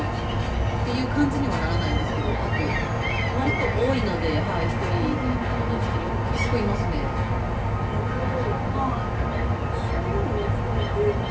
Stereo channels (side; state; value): both; identical; correlation 1.00